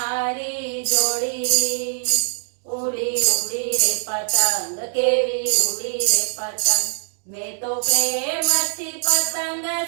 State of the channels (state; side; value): silent; left; digital silence